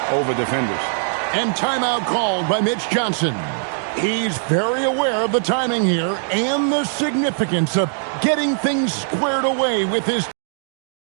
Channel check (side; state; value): left; silent; digital silence